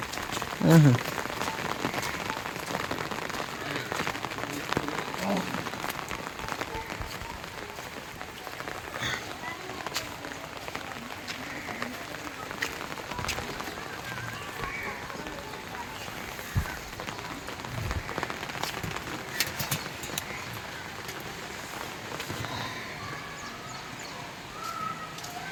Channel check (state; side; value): identical; both; correlation 1.00